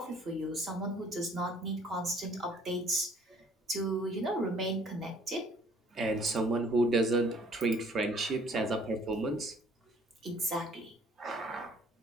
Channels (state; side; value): normal; both; correlation 0.58